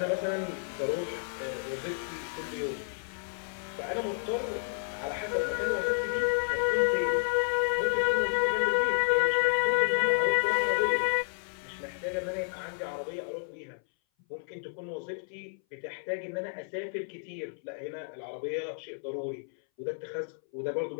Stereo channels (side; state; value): right; silent; 57 dB below the other